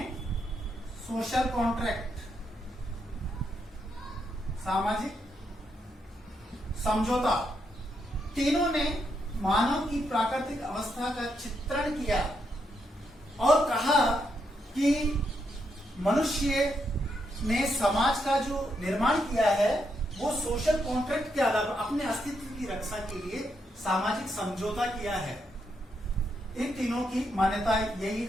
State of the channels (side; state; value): both; normal; correlation 0.80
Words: सोशल कॉन्ट्रैक्ट, सामाजिक समझौता, तीनों ने मानव की प्राकृतिक अवस्था का चित्रण किया और कहा कि मनुष्य ने समाज का जो निर्माण किया है वो सोशल कॉन्ट्रैक्ट के आधार पर अपने अस्तित्व की रक्षा के लिए सामाजिक समझौता किया है। इन तीनों की मान्यता यही